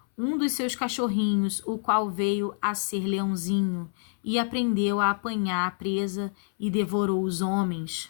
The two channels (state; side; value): silent; right; 60 dB below the other